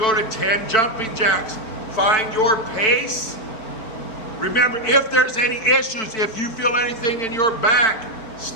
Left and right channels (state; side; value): late; right; 4.5 ms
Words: to 10 jumping jacks. Find your pace. Remember, if there's any issues, if you feel anything in your back,